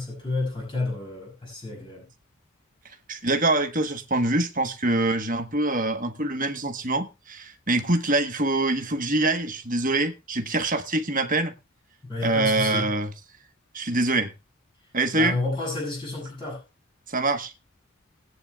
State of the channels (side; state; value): both; normal; correlation 0.27